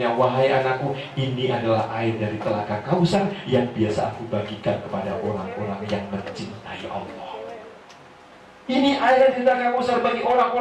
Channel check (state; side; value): identical; both; correlation 1.00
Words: wahai anakku, ini adalah air dari telaga Kausar yang biasa aku bagikan kepada orang-orang yang mencintai Allah. Ini air dari telaga Kausar bagi